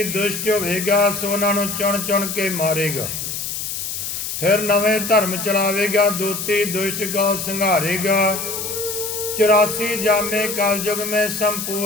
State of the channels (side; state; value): left; noise; hiss, 5 dB below the sound